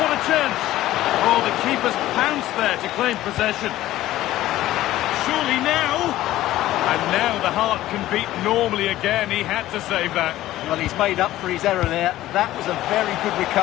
a chance! Oh, the keeper's pounced there to claim possession. Surely now... And now the heart can beat normally again. He had to save that. Well, he's made up for his error there. That was a very good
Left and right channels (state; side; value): quieter; right; 15.0 dB